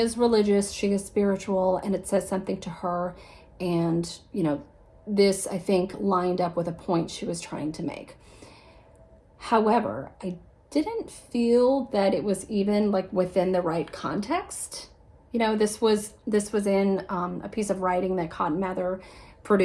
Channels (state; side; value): identical; both; correlation 1.00